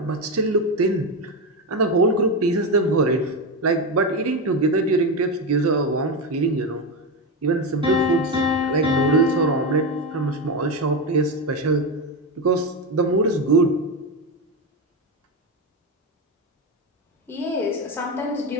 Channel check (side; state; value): both; normal; correlation 0.13